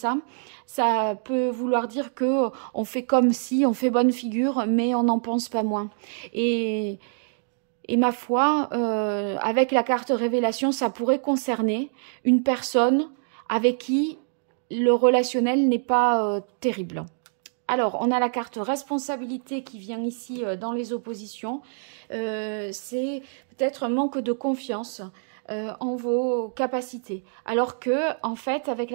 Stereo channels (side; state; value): left; silent; digital silence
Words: peut vouloir dire que on fait comme si, on fait bonne figure, mais on n'en pense pas moins. Et ma foi, avec la carte révélation, ça pourrait concerner une personne avec qui le relationnel n'est pas terrible. Alors, on a la carte responsabilité qui vient ici dans les oppositions. C'est peut-être un manque de confiance en vos capacités. Alors que, en fait, avec